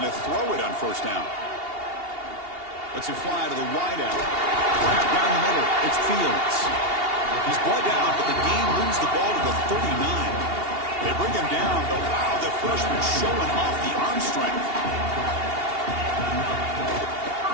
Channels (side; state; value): left; late; 2.8 ms